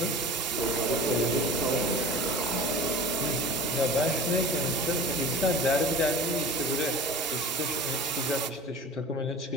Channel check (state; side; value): normal; both; correlation 0.37